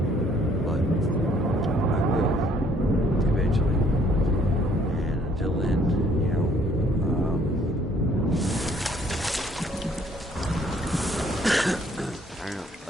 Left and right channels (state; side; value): normal; both; correlation 0.62